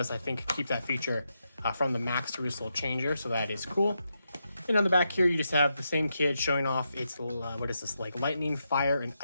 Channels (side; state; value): both; inverted; correlation -0.84